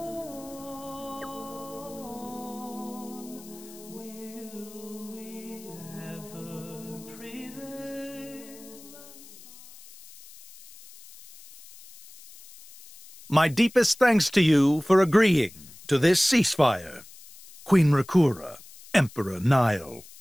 Will we ever prevail? My deepest thanks to you for agreeing to this ceasefire, Queen Rakura, Emperor Nile.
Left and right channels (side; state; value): left; noise; hiss, 20 dB below the sound